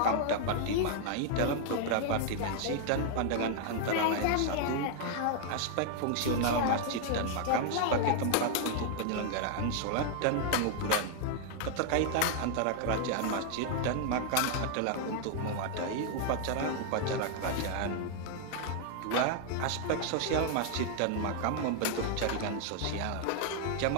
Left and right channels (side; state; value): both; different; correlation 0.00